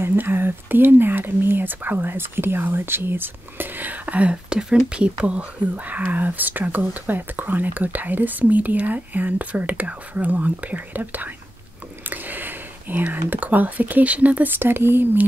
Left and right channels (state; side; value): normal; both; correlation 0.92